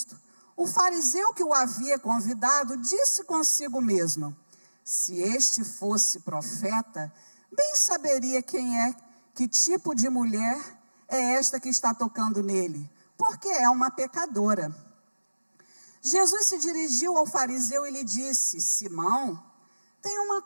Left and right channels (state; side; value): inverted; both; correlation -1.00